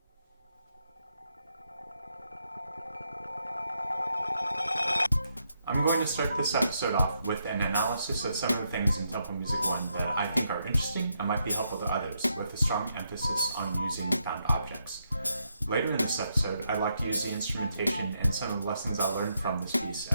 I'm going to start this episode off with an analysis of some of the things in Temple Music 1 that I think are interesting and might be helpful to others, with a strong emphasis on using found objects. Later in this episode, I'd like to use the instrumentation and some of the lessons I learned from this piece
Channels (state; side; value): inverted; both; correlation -0.80